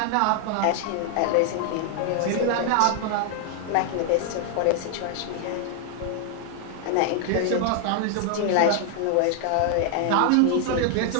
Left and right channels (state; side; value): different; both; correlation 0.00